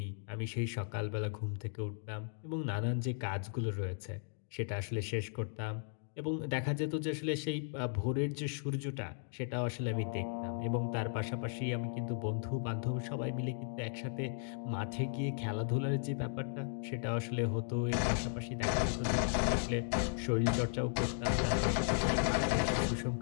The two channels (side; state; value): right; silent; digital silence